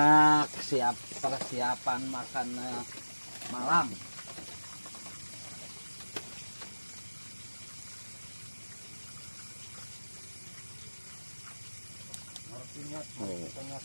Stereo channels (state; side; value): inverted; both; correlation -1.00